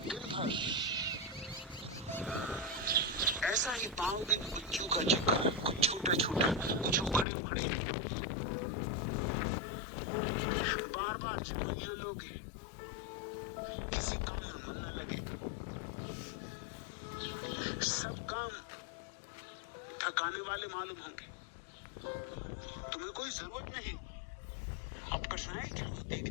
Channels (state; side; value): drops out; right; at 7.2 s